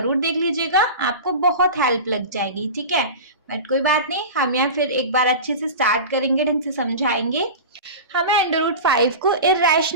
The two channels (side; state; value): both; inverted; correlation -0.30